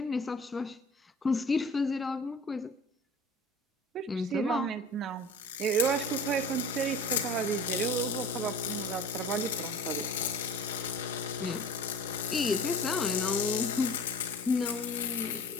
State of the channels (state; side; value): normal; both; correlation 0.39